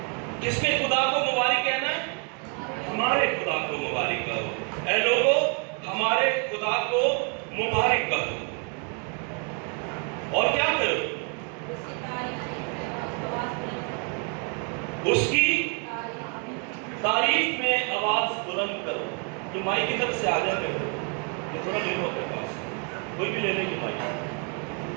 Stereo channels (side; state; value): left; quieter; 37.6 dB